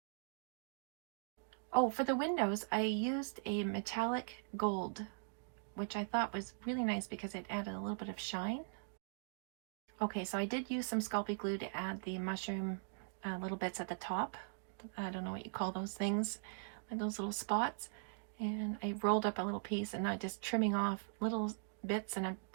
Oh, for the windows, I used a metallic gold, which I thought was really nice because it added a little bit of shine. Okay, so I did use some Sculpey glue to add the mushroom little bits at the top. I don't know what you call those things, like those little spots. And I rolled up a little piece, and I'm just trimming off little bits, and I've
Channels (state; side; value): silent; left; digital silence